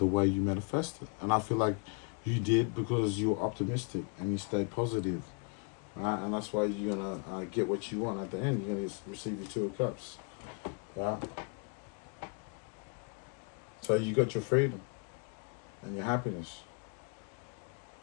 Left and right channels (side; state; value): right; quieter; 37.2 dB